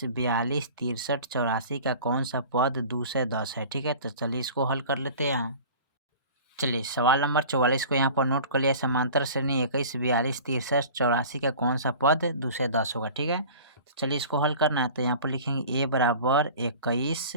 42, 63, 84 का कौन सा पद 2 से 10 है, ठीक है। तो चलिए इसको हल कर लेते हैं हम। चलिए सवाल नंबर 44 को यहाँ पर नोट कर लिया। समांतर श्रेणी 21, 42, 63, 84 का कौन सा पद 2 से 10 होगा, ठीक है। तो चलिए इसको हल करना है, तो यहाँ पर लिखेंगे a बराबर 21,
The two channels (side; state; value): both; inverted; correlation -0.42